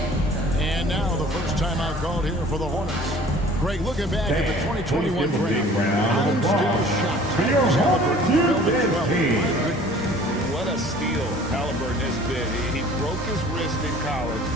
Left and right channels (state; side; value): normal; both; correlation 0.49